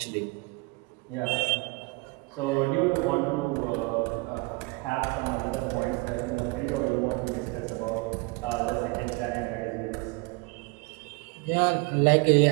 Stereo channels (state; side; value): quieter; left; 27.7 dB